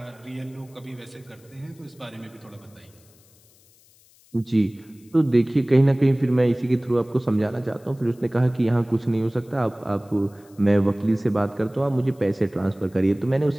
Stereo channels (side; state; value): left; noise; hiss, 29 dB below the sound